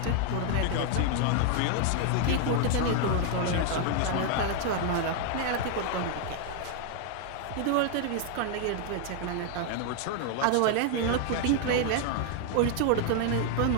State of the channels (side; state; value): both; different; correlation 0.00